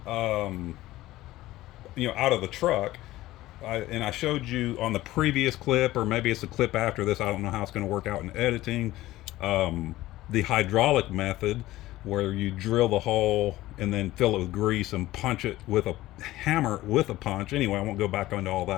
out of the truck. And I showed you on the previous clip, or maybe it's a clip after this, I don't know how it's going to work out in editing, the hydraulic method, where you drill the hole and then fill it with grease and punch it with a hammer with a punch. Anyway, I won't go back into all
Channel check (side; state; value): right; quieter; 16.5 dB